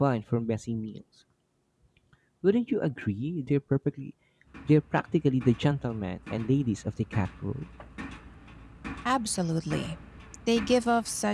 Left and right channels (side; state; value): both; identical; correlation 1.00